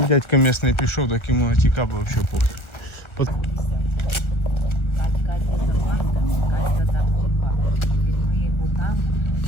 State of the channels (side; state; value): right; late; 1.4 ms